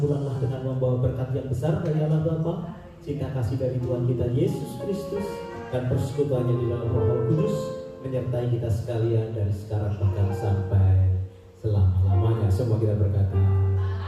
pulanglah dengan membawa berkat yang besar dari Allah Bapa, cinta kasih dari Tuhan kita Yesus Kristus, dan persekutuannya di dalam Roh Kudus menyertai kita sekalian dari sekarang bahkan sampai selama-lamanya. Semua kita berkata,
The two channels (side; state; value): both; identical; correlation 1.00